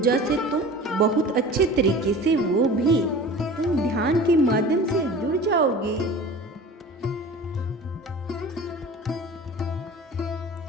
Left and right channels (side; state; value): both; normal; correlation 0.39